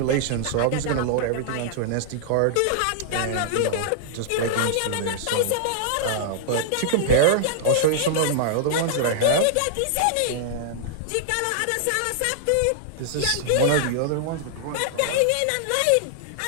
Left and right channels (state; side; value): different; both; correlation -0.01